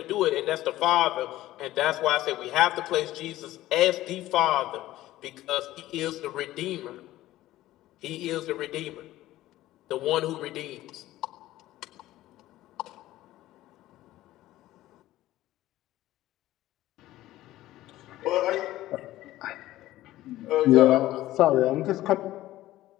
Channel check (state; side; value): quieter; right; 15.4 dB